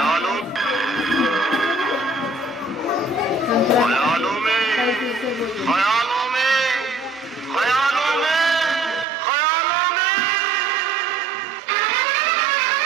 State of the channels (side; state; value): left; drops out; at 9.1 s